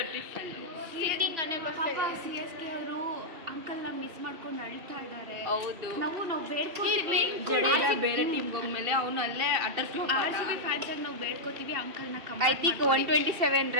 ಡಿಫ್ರೆಂಟ್ ಪಾಪ CSK ಅವರು ಅಂಕಲ್ನ ಮಿಸ್ ಮಾಡ್ಕೊಂಡು ಅಳ್ತಾ ಇದ್ದಾರೆ. ಹೌದು, ನಾವು ಬೇಡ್ಕೋತೀವಿ. ಬೇರೆ ಟೀಮ್ ಹೋಗ್ಮೇಲೆ ಅವನು ಅಲ್ಲೇ ಅಟರ್ ಫ್ಲಾಪ್. RCB ಫ್ಯಾನ್ಸ್ ಆಗಿ ನಾವು ಬೇಡ್ಕೋತೀವಿ ಅಂಕಲ್ನ. ಐ ಥಿಂಕ್ 127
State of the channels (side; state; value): left; late; 2.7 ms